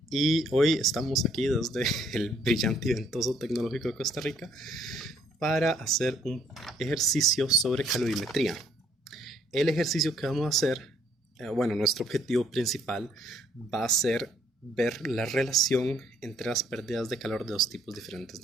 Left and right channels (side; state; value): both; normal; correlation 0.66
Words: y hoy estamos aquí desde el brillante y ventoso Tecnológico de Costa Rica para hacer un ejercicio sobre calorimetría. El ejercicio que vamos a hacer, bueno, nuestro objetivo principal va a ser ver la relación entre las pérdidas de calor de dos tipos diferentes